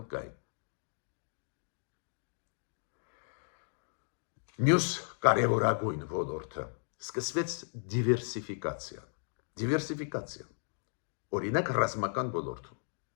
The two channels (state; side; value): silent; right; digital silence